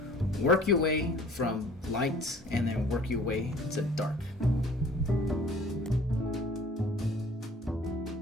work your way from light and then work your way to dark.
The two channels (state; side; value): normal; both; correlation 0.50